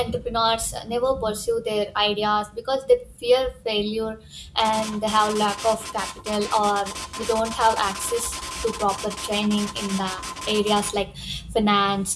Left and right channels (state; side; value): identical; both; correlation 1.00